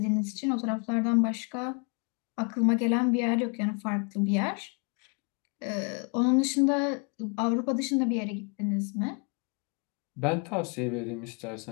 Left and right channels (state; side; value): quieter; right; 35.4 dB